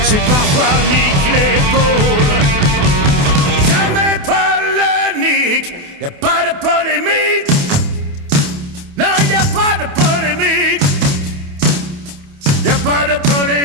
C'est parfois Mick l'épaule, jamais polémique. Y'a pas de polémique. Non, y'a pas de polémique. Y'a pas de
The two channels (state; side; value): late; left; 28 ms